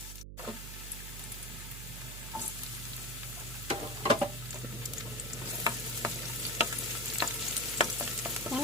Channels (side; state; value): right; noise; hum, 9 dB below the sound